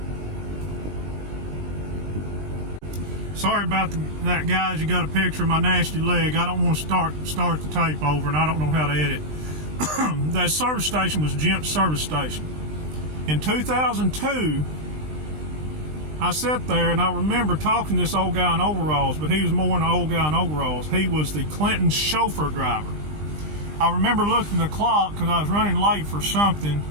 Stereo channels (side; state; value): left; late; 20 ms